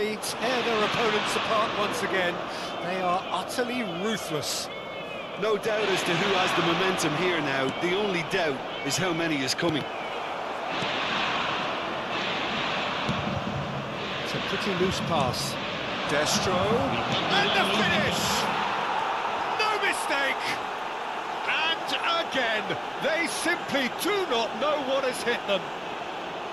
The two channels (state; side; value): identical; both; correlation 1.00